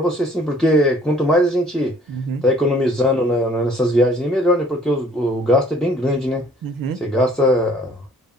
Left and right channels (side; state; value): both; normal; correlation 0.56